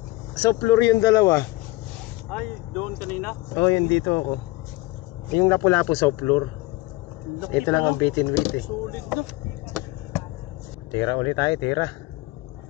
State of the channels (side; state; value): right; quieter; 19.9 dB